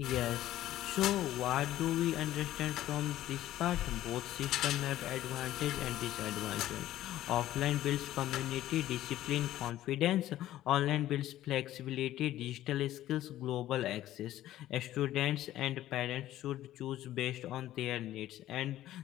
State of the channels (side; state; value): right; quieter; 13.8 dB